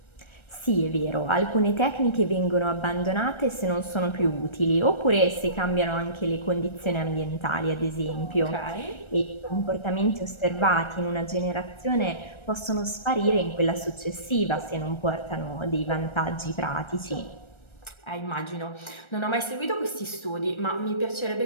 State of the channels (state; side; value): late; right; 1.3 ms